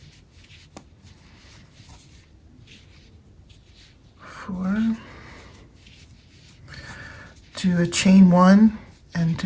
4. Do a chain 1 and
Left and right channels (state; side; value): identical; both; correlation 1.00